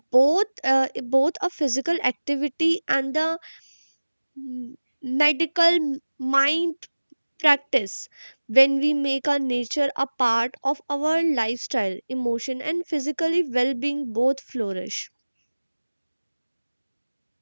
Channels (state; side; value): inverted; both; correlation -1.00